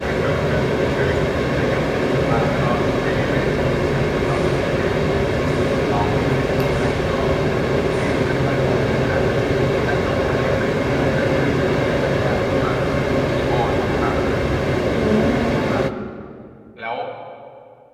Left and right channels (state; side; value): identical; both; correlation 1.00